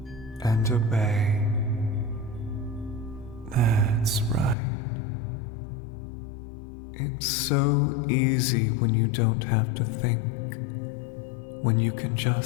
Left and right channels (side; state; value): right; drops out; at 4.5 s